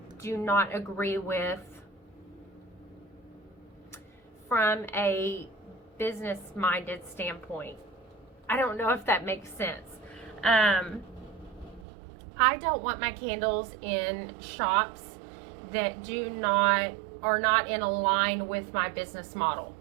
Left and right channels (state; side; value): drops out; left; at 11.9 s